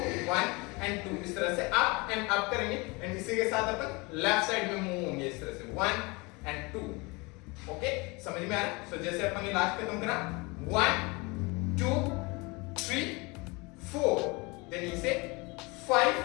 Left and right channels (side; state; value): right; quieter; 26.6 dB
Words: 1 एंड 2 इस तरह से अप एंड अप करेंगे एंड इसी के साथ अपन लेफ्ट साइड में मूव होंगे इस तरह से 1 एंड 2। ओके, समझ में आ रहा? सो जैसे अपन ने लास्ट खत्म करा 1 2 3 4 देन इसे 5